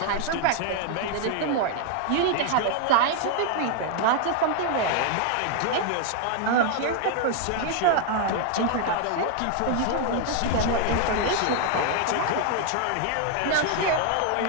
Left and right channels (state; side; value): different; both; correlation 0.00